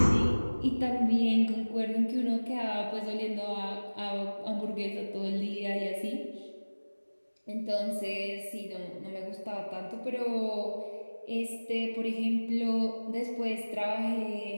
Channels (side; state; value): both; inverted; correlation -1.00